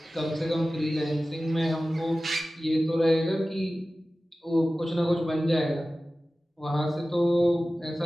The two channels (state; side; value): normal; both; correlation 0.96